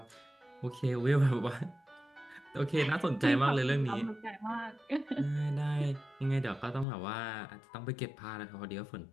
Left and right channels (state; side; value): drops out; right; at 6.9 s